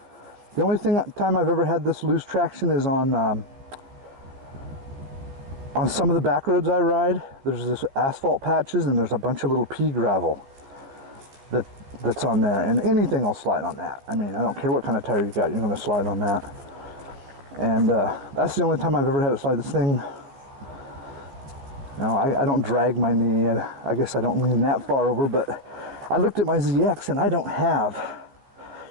The only time I've ever had this lose traction is on some of the back roads I ride. There's this asphalt patches, and there's a bunch of little pea gravel that's on there, and anything will slide on that. I mean, I don't care what kind of tire you got, you're going to slide on that. And that's the only time I've ever had it slide. This thing, you know, I don't drag my knee. I guess I don't lean that far over, but I looked at my ZX, and I don't have,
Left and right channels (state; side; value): late; left; 15 ms